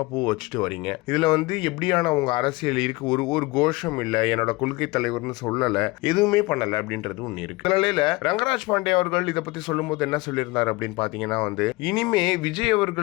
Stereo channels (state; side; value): quieter; right; 22.5 dB